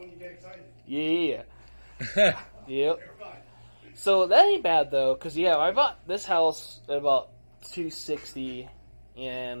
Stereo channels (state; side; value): inverted; both; correlation -1.00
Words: you get excited. Yeah. Yep. You're fine. So that ain't bad though, because I bought this house at about $260,